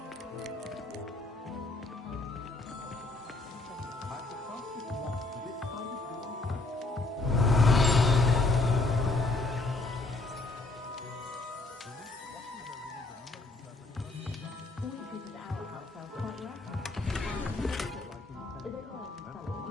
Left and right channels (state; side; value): quieter; right; 3.3 dB